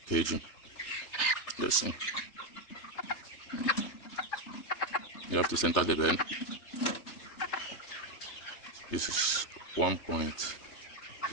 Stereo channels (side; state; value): right; late; 3.3 ms